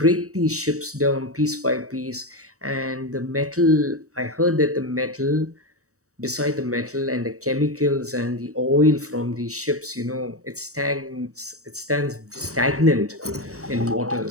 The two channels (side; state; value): left; late; 0.65 ms